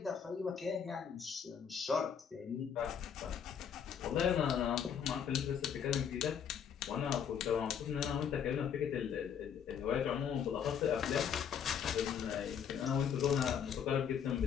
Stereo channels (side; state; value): right; quieter; 7.8 dB